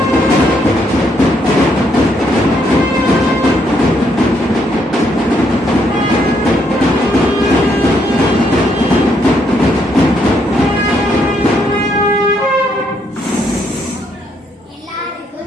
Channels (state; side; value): normal; both; correlation 0.73